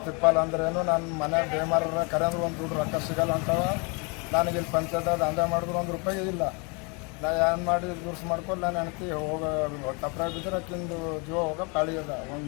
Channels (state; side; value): quieter; right; 32.2 dB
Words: ಅಂದ್ರೇನು ನನ್ನ ಮನೆ ಬೇಮಾರ ಕರೆ ಅಂದ್ರೆ ಒಂದು ದುಡ್ಡು ರೊಕ್ಕ ಸಿಗಲ್ಲ ಅಂತವ. ನನಗೆ ಇಲ್ಲಿ ಪಂಚಾಯತ್ ದಂಧೆ ಮಾಡಿದ್ರು ₹1 ಇಲ್ಲ. ನಾ ಏನು ಮಾಡಿ ದುರ್ಸ್ ಮಾಡ್ಕೊಂಡು ನಾನು ಹೆಣ್ತಿ ಹೋಗ ತಪ್ಪರಾಗ ಬಿದ್ದರೆ ಅಕ್ಕಿಂದು ಜೀವ ಹೋಗೋ ಪಾಳಿ ಅದ.